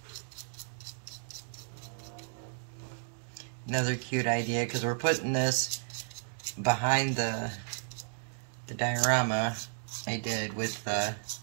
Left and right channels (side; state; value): left; silent; digital silence